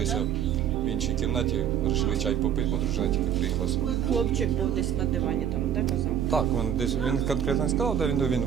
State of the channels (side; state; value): left; quieter; 9.2 dB